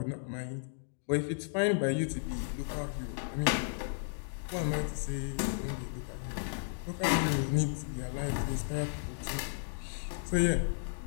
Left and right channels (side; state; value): right; silent; digital silence